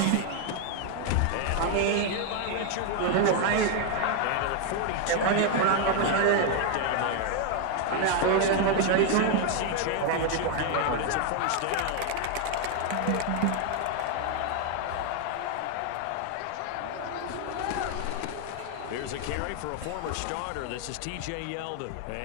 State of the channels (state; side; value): different; both; correlation 0.01